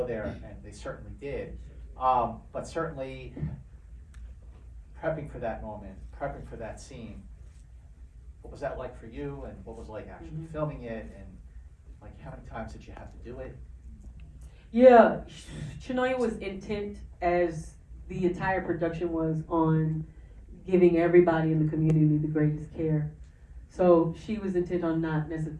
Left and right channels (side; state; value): both; identical; correlation 1.00